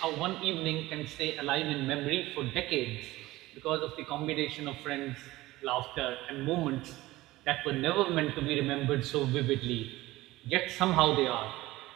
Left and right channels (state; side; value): quieter; left; 18.2 dB